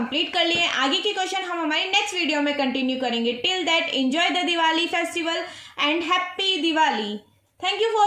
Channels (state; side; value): identical; both; correlation 1.00